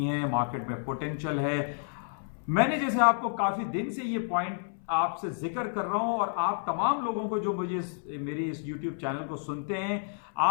हैं। मार्केट में पोटेंशियल है। मैंने जैसे आपको काफी दिन से ये पॉइंट आपसे जिक्र कर रहा हूं, और आप तमाम लोगों को जो मुझे मेरी इस YouTube चैनल को सुनते हैं,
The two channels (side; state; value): right; silent; 58 dB below the other